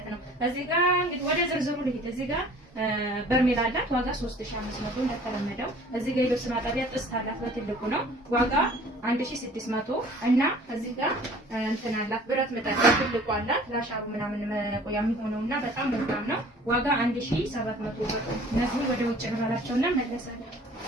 ነው። እዚህ ጋር እንግዲህ ወደ ዝርዝሩ ልሂድ። እዚህ ጋር በርሜል አላት ዋጋ 3500 እንደተለመደው። እዚህ ጋር የልብስ ማጠቢያ ጥስት አላት በትልቁ ነው ዋጋ 1600 እና እዚህ ጋር እንትን አላት ብረት ምጣድ በትልቁ አላት ላሻሩ ምናምን መቆያ የሚሆነውና በጣም ወፍራም ነው ዋጋ 1700 ብር። እነዚህ ወደ ውጭ እንባላቸውና መለሳለን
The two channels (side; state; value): both; normal; correlation 0.50